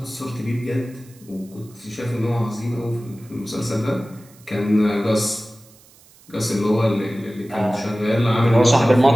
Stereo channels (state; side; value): noise; right; hiss, 26 dB below the sound